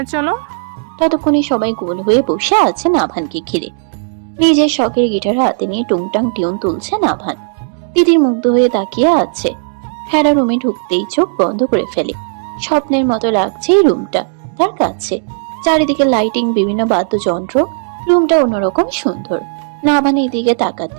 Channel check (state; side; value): silent; left; digital silence